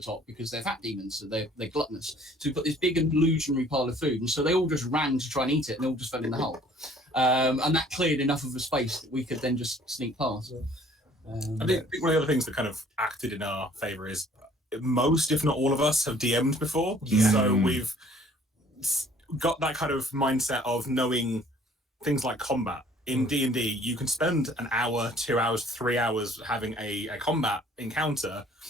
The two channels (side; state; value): both; normal; correlation 0.56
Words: because they're fat demons, so they're gluttonous. So we put this big illusionary pile of food, and so they all just ran to try and eat it, and they all just fell in the hole. And that cleared enough of a space that we could then just sneak past. I think one of the other things that kind of acted in our favour is most, if not all of us, have DM'd before. Yeah. So we've got that kind of mindset of knowing things like combat. In D&D, you can spend an hour, 2 hours, 3 hours having a combat encounter